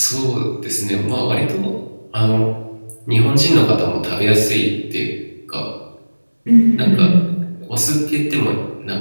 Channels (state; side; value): inverted; both; correlation -1.00